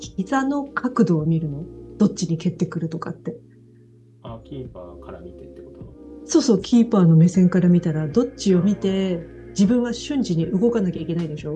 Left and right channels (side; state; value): both; identical; correlation 1.00